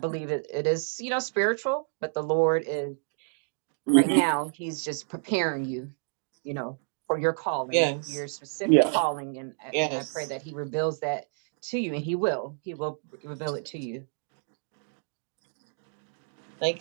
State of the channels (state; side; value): silent; left; 58 dB below the other